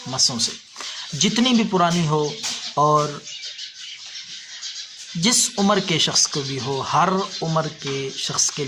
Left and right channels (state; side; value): identical; both; correlation 1.00